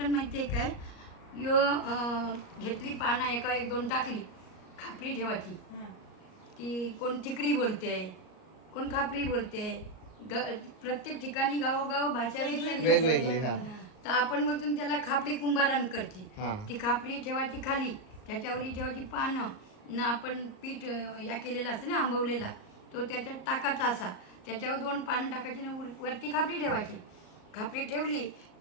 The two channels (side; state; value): right; late; 38 ms